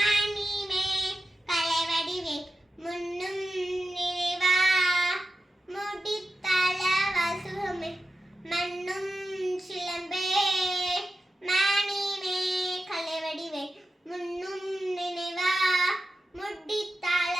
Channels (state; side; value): normal; both; correlation 0.92